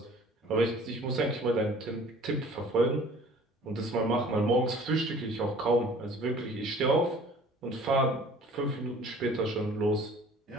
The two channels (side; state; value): both; normal; correlation 0.50